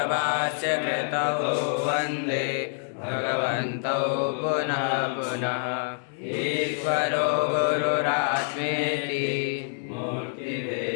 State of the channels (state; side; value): silent; right; 60 dB below the other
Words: वन्दे भगवन्तौ पुनः पुनः। ईश्वरो गुरुरात्मेति